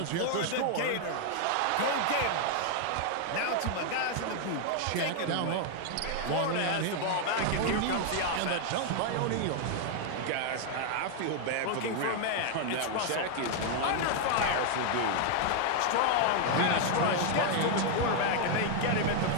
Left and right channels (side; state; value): both; different; correlation 0.00